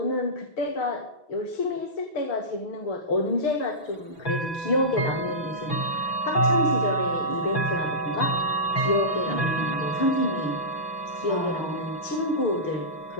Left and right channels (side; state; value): right; late; 6.0 ms